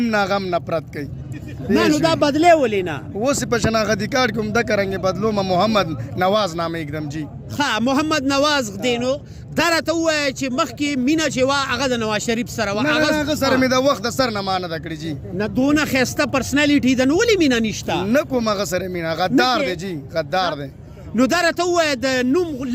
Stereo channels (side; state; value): both; identical; correlation 1.00